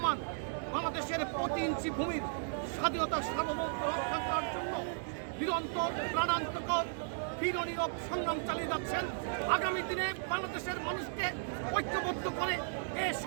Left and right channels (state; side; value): silent; left; digital silence